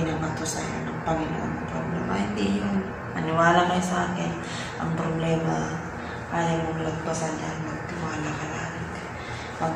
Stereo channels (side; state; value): both; identical; correlation 1.00